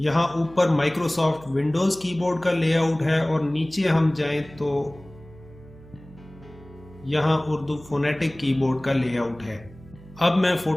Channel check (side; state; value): right; noise; hum, 21 dB below the sound